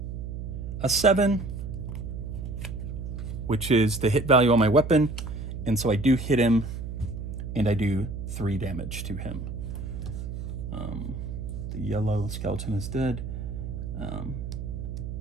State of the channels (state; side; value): noise; right; hum, 6 dB below the sound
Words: a 7, which is the hit value on my weapon. And so I do hit him, and I do 3 damage to him. The yellow skeleton is dead.